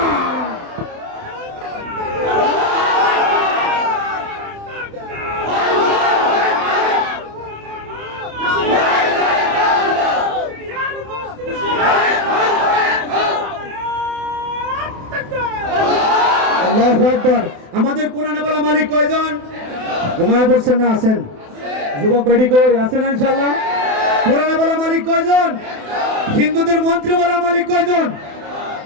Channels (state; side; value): late; left; 28 ms